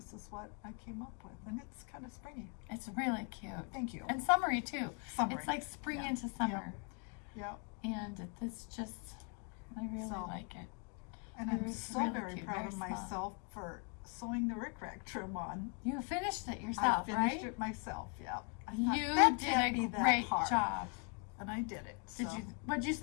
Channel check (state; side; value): quieter; right; 36.6 dB